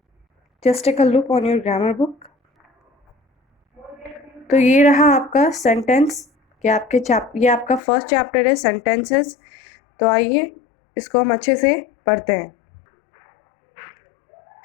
Just take a look on your grammar book. तो ये रहा आपका सेंटेंस कि ये आपका फर्स्ट चैप्टर है सेंटेंसेस। तो आइए इसको हम अच्छे से पढ़ते हैं।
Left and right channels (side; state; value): right; drops out; at 7.8 s